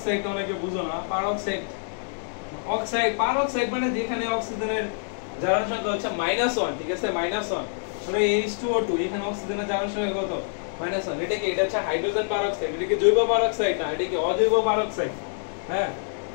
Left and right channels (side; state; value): right; silent; digital silence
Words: অনেকে বুঝো না। পারক্সাইড, অক্সাইড, পারক্সাইড মানে যেখানে অক্সিজেনের জারণ সংখ্যা হচ্ছে -1, ঠিক আছে, -1। মানে H2O2, এখানে অক্সিজেনের জারণ সংখ্যা কত? -1 এটা কি এটা হচ্ছে হাইড্রোজেন পারঅক্সাইড এটা কি জৈব পারঅক্সাইড না এটা কি অজৈব পারঅক্সাইড হ্যাঁ